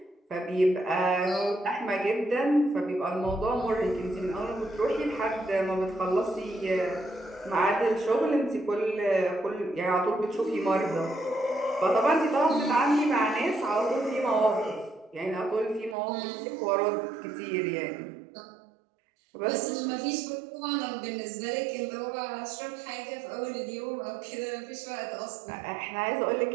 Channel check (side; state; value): left; drops out; at 16.0 s